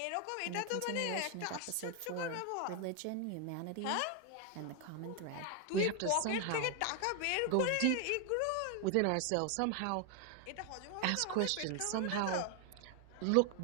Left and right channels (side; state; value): both; different; correlation 0.01